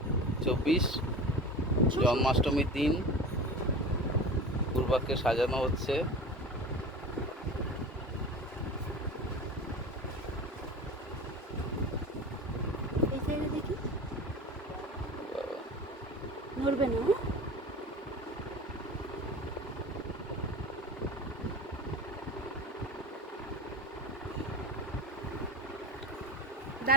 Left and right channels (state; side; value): normal; both; correlation 0.33